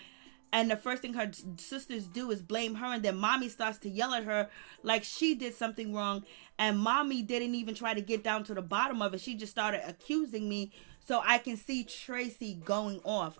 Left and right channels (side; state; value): left; silent; digital silence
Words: And the first thing her sisters do is blame her, and then mommy starts to yell at her like she did something wrong. And mommy didn't even try to get down to the bottom of it. She just started accusing me. So I can see Tracy going off.